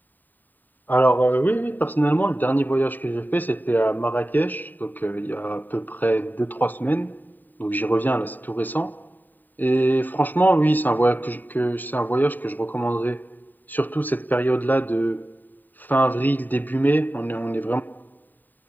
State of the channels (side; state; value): right; late; 0.089 ms